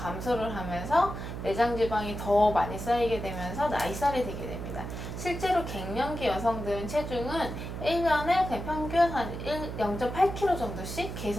하면서 내장 지방이 더 많이 쌓이게 되면서 나이살이 되게 됩니다. 실제로 갱년기 여성들은 체중은 1년에 그냥 평균 한 0.8kg 정도씩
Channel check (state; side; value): noise; right; hum, 7 dB below the sound